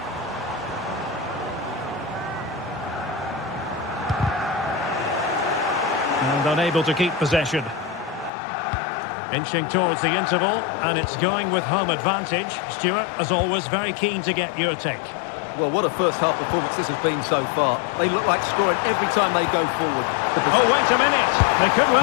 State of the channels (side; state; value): right; drops out; at 8.3 s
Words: And unable to keep possession. Inching towards the interval, and it's going with home advantage. Stuart, as always, very keen to get your take. Well, what a first-half performance this has been so far. They look like scoring every time they go forward. Oh, wait a minute. They could